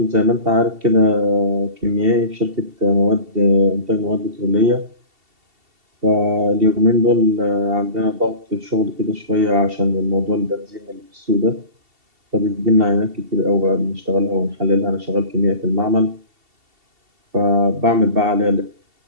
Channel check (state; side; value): late; left; 2.7 ms